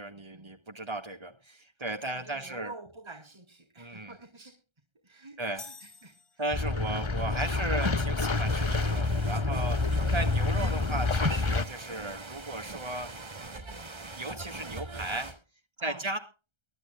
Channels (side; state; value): left; late; 1.3 ms